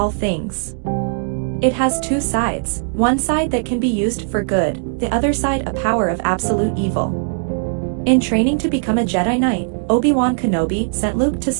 things. It has two sides, one side that can be used for good, the other side a power of absolute evil. In training to become a Jedi Knight, Obi-Wan Kenobi sent Luke to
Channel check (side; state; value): left; silent; digital silence